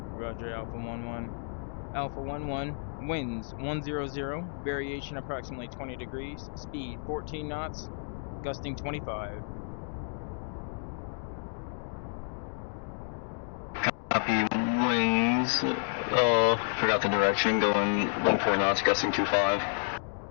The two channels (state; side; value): silent; right; 57 dB below the other